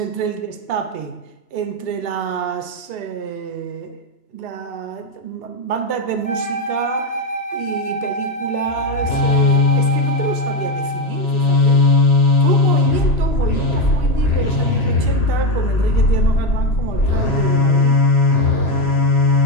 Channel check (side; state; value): right; late; 2.8 ms